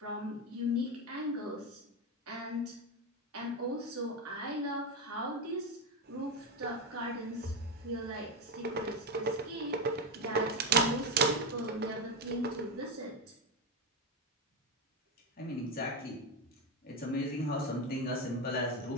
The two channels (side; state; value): both; normal; correlation 0.11